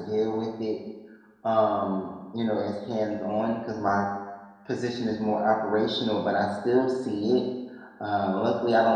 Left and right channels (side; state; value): both; identical; correlation 1.00